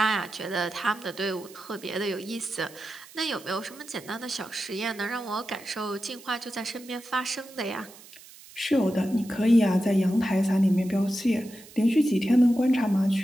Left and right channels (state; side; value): noise; right; hiss, 20 dB below the sound